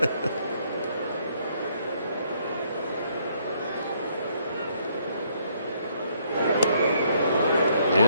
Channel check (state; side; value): inverted; both; correlation -0.69